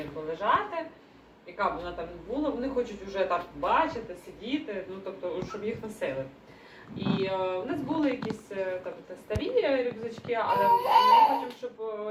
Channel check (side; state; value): both; identical; correlation 1.00